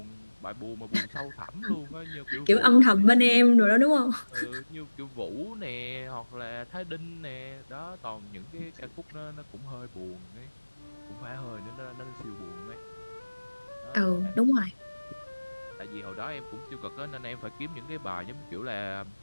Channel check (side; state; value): both; inverted; correlation -1.00